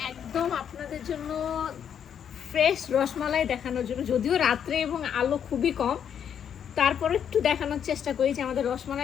একদম আপনাদের জন্য ফ্রেশ রসমালাই দেখানোর জন্য। যদিও রাত্রে এবং আলো খুবই কম, তারপর একটু দেখানোর চেষ্টা করি যে আমাদের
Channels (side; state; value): right; quieter; 8.4 dB